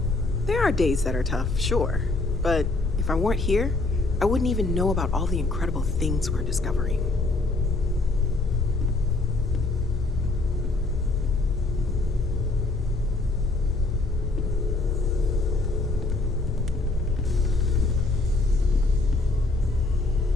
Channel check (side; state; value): right; quieter; 3.2 dB